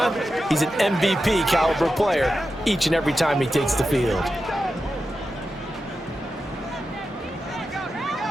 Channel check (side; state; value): both; normal; correlation 0.90